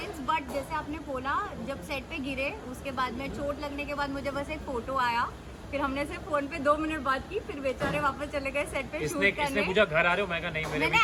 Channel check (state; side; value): identical; both; correlation 1.00